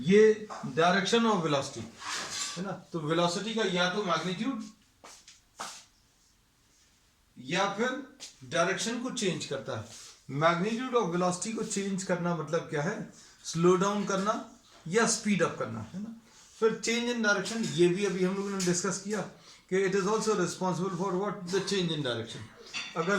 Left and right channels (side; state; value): both; identical; correlation 1.00